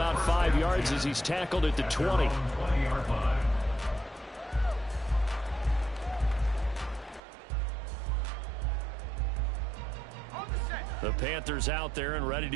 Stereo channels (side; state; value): left; drops out; at 7.2 s